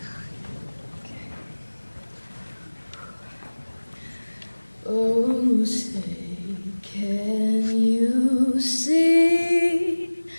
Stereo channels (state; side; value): inverted; both; correlation -1.00